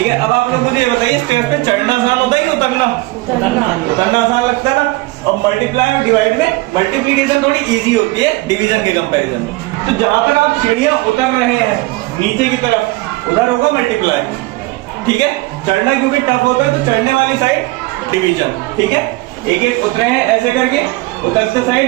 है। अब आप लोग मुझे ये बताइए, स्क्वायर पे चढ़ना आसान होता है कि उतरना? उतरना आसान लगता है ना। और मल्टीप्लाई और डिवाइड में मल्टीप्लीकेशन थोड़ी इजी होती है डिवीजन के कंपैरिजन में। तो जहां पर आप सीढ़ियां उतर रहे हैं नीचे की तरफ, उधर होगा मल्टीप्लाई, ठीक है। चढ़ना क्योंकि टफ होता है तो चढ़ने वाली साइड डिवीजन, ठीक है। एक एक उतरे हैं ऐसे करके, उतरते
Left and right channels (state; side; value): quieter; left; 21.4 dB